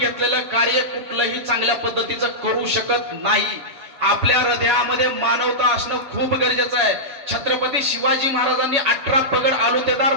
कार्य कुठलंही चांगल्या पद्धतीचं करू शकत नाही. आपल्या हृदयामध्ये मानवता असणं खूप गरजेचं आहे. छत्रपती शिवाजी महाराजांनी 18 पगड आलुतेदार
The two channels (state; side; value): late; left; 7.1 ms